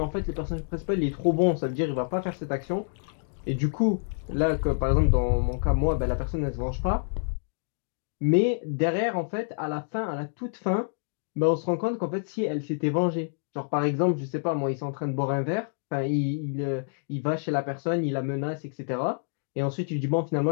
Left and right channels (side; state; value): right; silent; digital silence